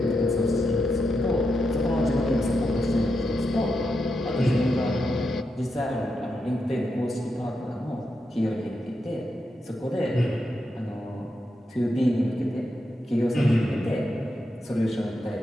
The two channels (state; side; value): normal; both; correlation 0.85